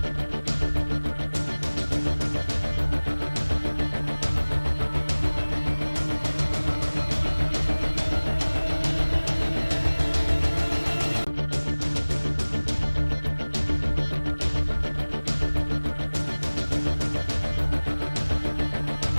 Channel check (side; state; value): both; inverted; correlation -1.00